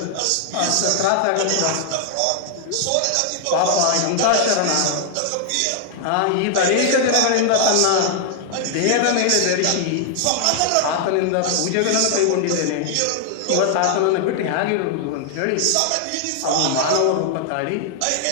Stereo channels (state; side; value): different; both; correlation 0.00